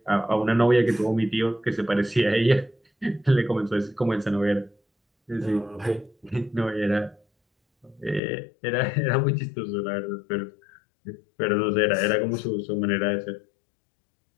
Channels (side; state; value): right; drops out; at 8.2 s